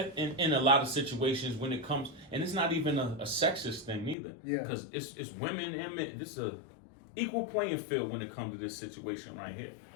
a lot of situations when it comes, and it's not even a sexist thing neither. Yeah. Because it's women and men. This is a equal playing field when it comes to this situation right here.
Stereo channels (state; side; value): drops out; right; at 4.2 s